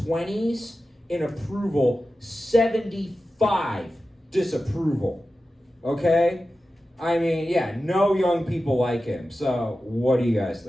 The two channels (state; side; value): normal; both; correlation 0.93